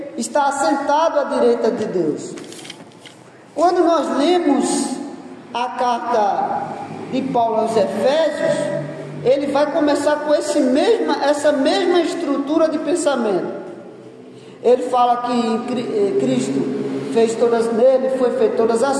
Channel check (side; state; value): both; identical; correlation 1.00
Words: está assentado à direita de Deus. Quando nós lemos a carta de Paulo aos Efésios, ele vai começar com essa mesma estrutura de pensamento. Ele fala que Cristo nele foi feito todas